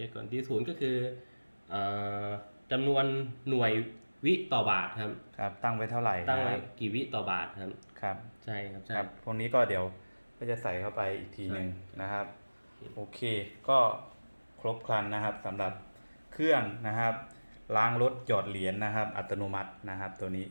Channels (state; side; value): inverted; both; correlation -1.00